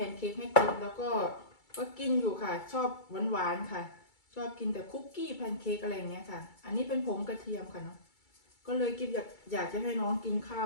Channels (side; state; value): right; late; 2.3 ms